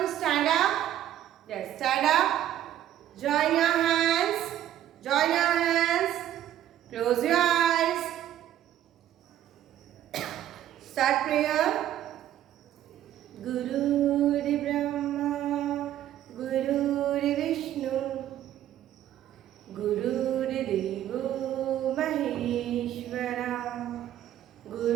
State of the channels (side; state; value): left; quieter; 11.9 dB